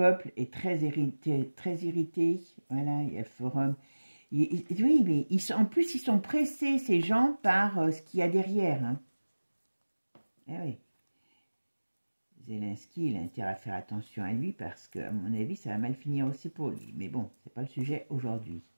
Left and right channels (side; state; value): both; inverted; correlation -1.00